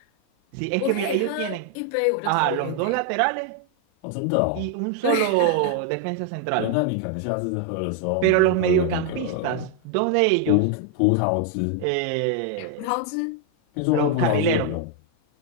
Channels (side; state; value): both; different; correlation 0.00